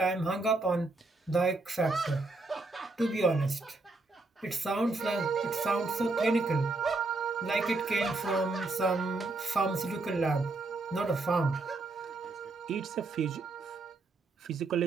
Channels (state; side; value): quieter; left; 3.3 dB